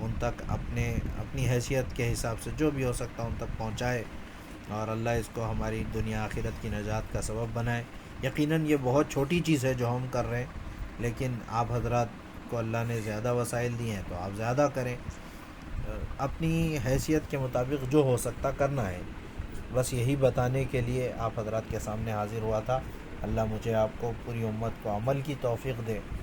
تک اپنی حیثیت کے حساب سے جو بھی ہو سکتا ہے ان تک پہنچائے، اور اللہ اس کو ہماری دنیا آخرت کی نجات کا سبب بنائے. یقیناً یہ بہت چھوٹی چیز ہے جو ہم کر رہے ہیں، لیکن آپ حضرات کو اللہ نے زیادہ وسائل دیے ہیں تو آپ زیادہ کریں. اپنی حیثیت کے مطابق جو ہو سکتا کرنا ہے. بس یہی بتانے کے لیے آپ حضرات کے سامنے حاضر ہوا تھا. اللہ مجھے آپ کو پوری امت کو عمل کی توفیق دے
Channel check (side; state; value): both; identical; correlation 1.00